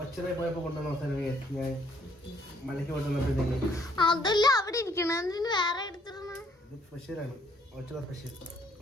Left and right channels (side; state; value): both; normal; correlation 0.65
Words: പോയപ്പോ കൊണ്ടുവന്ന മസാല ഞാൻ മലയ്ക്ക് കൊണ്ടുവന്നപ്പോഴത്തേക്ക് അതല്ല അവിടെ ഇരിക്കണ വേറെ എടുത്തിരുന്നു. ഇത് സ്പെഷ്യലാണ്, ഓച്ചറ സ്പെഷ്യൽ.